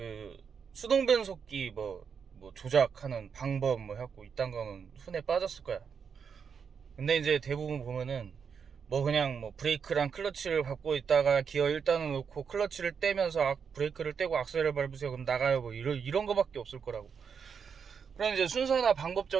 수동변속기 뭐 조작하는 방법 뭐 해갖고 이딴 거는 흔해 빠졌을 거야. 근데 이제 대부분 보면은 그냥 브레이크랑 클러치를 밟고 있다가 기어 1단을 놓고 클러치를 떼면서 브레이크를 떼고 악셀을 밟으세요 그럼 나가요 이런 거밖에 없을 거라고. 그럼 이제 순서나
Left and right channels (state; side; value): quieter; left; 6.6 dB